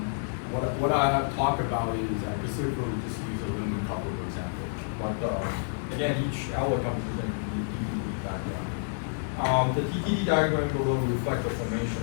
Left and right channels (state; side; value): silent; right; 59 dB below the other